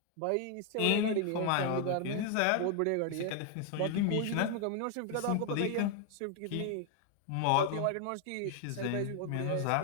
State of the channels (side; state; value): both; different; correlation 0.00